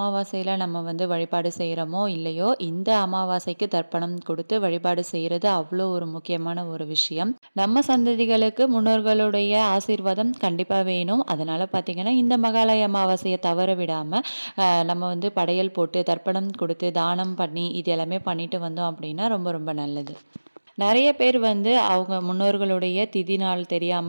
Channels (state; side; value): inverted; both; correlation -1.00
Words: நம்ம வந்து வழிபாடு செய்றோமோ இல்லையோ, இந்த அமாவாசைக்கு தர்ப்பணம் கொடுத்து வழிபாடு செய்றது அவ்வளோ ஒரு முக்கியமான ஒரு விஷயம். நம்ம சந்ததிகளுக்கு முன்னோர்களுடைய ஆசீர்வாதம் கண்டிப்பா வேணும். அதனால பார்த்தீங்கன்னா, இந்த மகாலய அமாவாசைய தவற விடாம, நம்ம வந்து படையல் போட்டு, தர்ப்பணம் கொடுத்து, தானம் பண்ணி, இது எல்லாமே பண்ணிட்டு வந்தோம் அப்படின்னா ரொம்ப ரொம்ப நல்லது. நெறைய பேர் வந்து அவங்க முன்னோர்களுடைய திதி நாள்